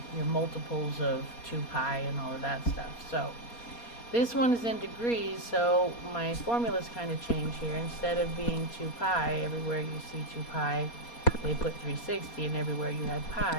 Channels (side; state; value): right; late; 4.2 ms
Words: your multiples of 2 pi and all of that stuff. So this one is in degrees, so my formulas kind of change here. Instead of being 2 pi, everywhere you see 2 pi, they put 360, and everywhere you had